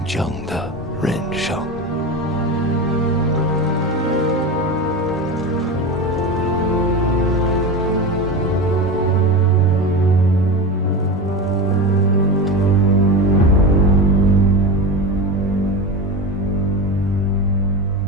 正的人生。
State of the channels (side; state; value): both; normal; correlation 0.23